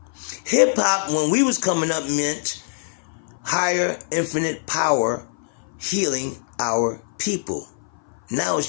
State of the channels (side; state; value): right; silent; 58 dB below the other